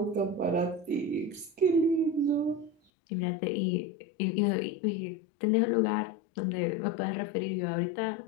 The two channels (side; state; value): right; drops out; at 2.8 s